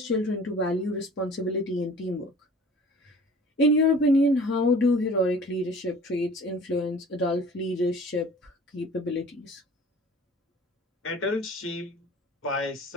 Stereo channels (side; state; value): both; normal; correlation 0.46